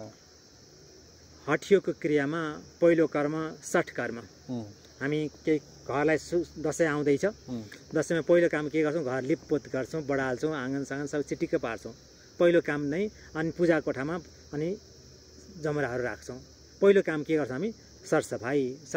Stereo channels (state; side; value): identical; both; correlation 1.00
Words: हठयोगको क्रियामा पहिलो कर्म सठ कर्म। हामी केही घरलाई दसैँ आउँदैछ, दसैँमा पहिलो काम के गर्छौँ, घर लिपपोत गर्छौँ, बढाल्छौँ, आँगन सबै चिटिक्क पार्छौँ, पहिलो काम नै। अनि पूजा कोठामा अनि जमराहरू राख्छौँ। पहिलो काम के गर्छौँ हामी,